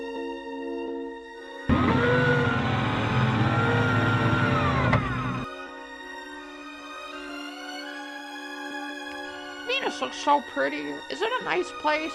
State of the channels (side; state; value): both; identical; correlation 1.00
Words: Venus looks so pretty. Is it a nice place?